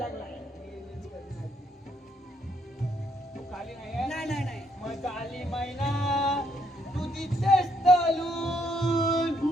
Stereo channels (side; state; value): both; normal; correlation 0.72